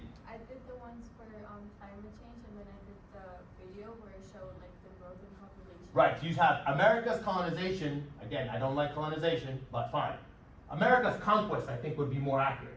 I did the ones for climate change, and then I did the video where it showed like the growth in population. Right, you have America's colonization. Again, I don't like colonization, but fine. America's conquest, I think, would be more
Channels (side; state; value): both; identical; correlation 1.00